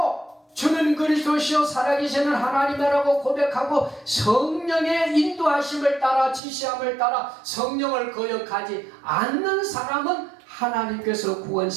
주는 그리스도시요 살아계시는 하나님이라고 고백하고 성령의 인도하심을 따라 지시함을 따라 성령을 거역하지 않는 사람은 하나님께서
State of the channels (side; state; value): left; drops out; at 6.4 s